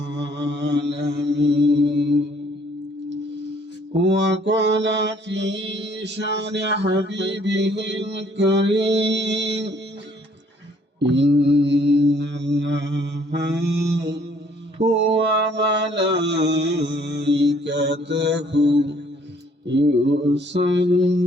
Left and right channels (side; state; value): both; normal; correlation 0.62